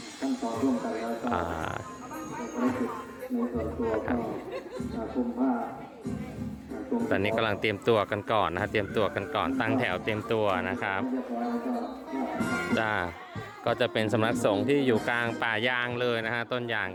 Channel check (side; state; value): both; identical; correlation 1.00